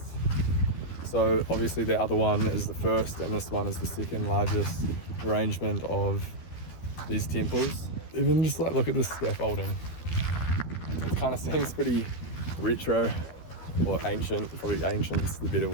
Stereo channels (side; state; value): right; late; 12 ms